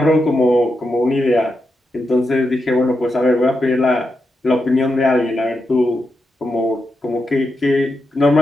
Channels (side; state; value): both; normal; correlation 0.86